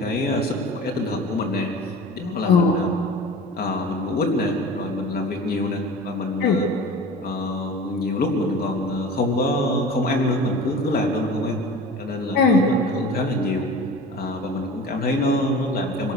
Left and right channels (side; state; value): both; normal; correlation 0.38